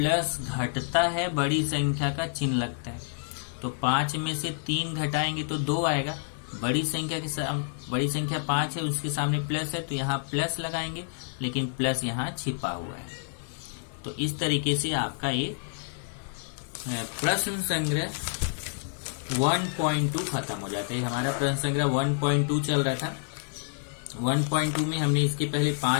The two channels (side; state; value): right; silent; digital silence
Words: घटता है, बड़ी संख्या का चिन्ह लगता है। तो 5 में से 3 घटाएंगे तो 2 आएगा। बड़ी संख्या 5 है, उसके सामने प्लस है, तो यहाँ प्लस लगाएंगे, लेकिन प्लस यहाँ छिपा हुआ है। तो इस तरीके से आपका ये प्रश्न संग्रह 1.2 खत्म हो जाता है। हमारा प्रश्न संग्रह 1.2 चल रहा था। 1.2 में हमने इसके पहले